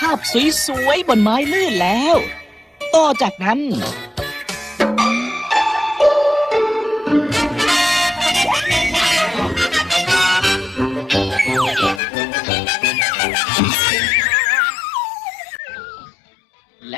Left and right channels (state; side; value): drops out; right; at 12.0 s